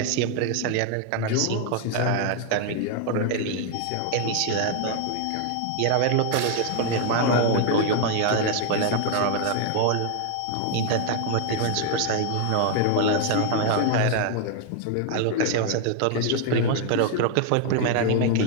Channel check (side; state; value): both; different; correlation 0.00